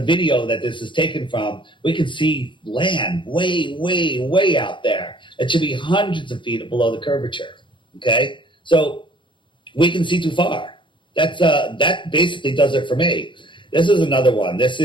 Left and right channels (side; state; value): right; late; 0.24 ms